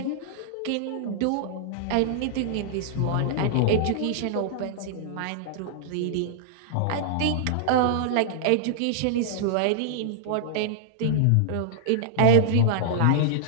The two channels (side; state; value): both; different; correlation -0.02